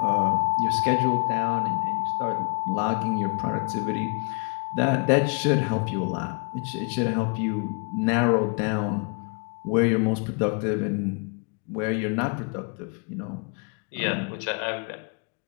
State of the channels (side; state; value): right; quieter; 35.0 dB